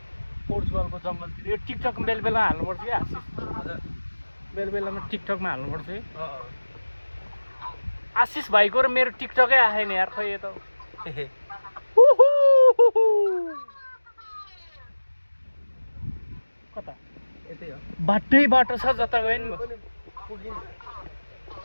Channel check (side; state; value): both; inverted; correlation -1.00